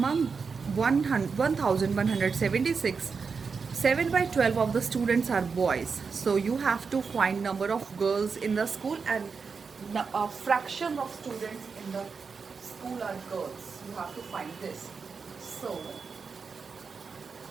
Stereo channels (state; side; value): quieter; left; 5.3 dB